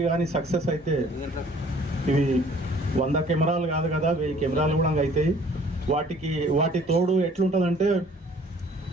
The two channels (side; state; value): both; normal; correlation 0.55